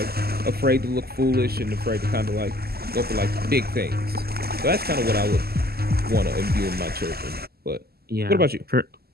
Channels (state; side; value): late; left; 0.46 ms